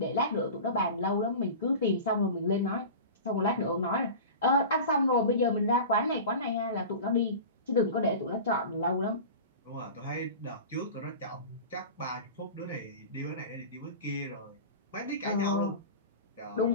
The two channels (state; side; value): inverted; both; correlation -0.33